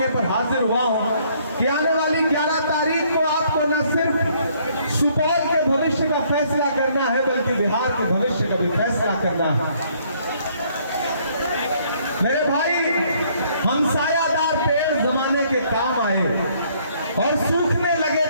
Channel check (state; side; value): inverted; both; correlation -0.65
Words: पर हाजिर हुआ हूं कि आने वाली 11 तारीख को आपको न सिर्फ सुपौल के भविष्य का फैसला करना है बल्कि बिहार के भविष्य का भी फैसला करना है। मेरे भाई, हम सायादार पेड़ जमाने के काम आए और सूखने लगे